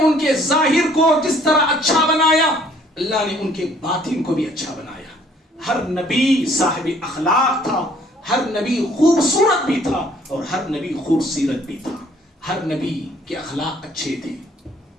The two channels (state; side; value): normal; both; correlation 0.60